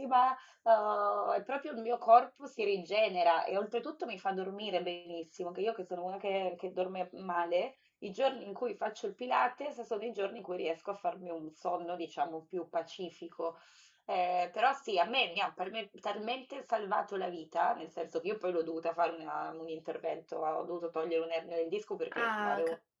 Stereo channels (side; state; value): both; identical; correlation 1.00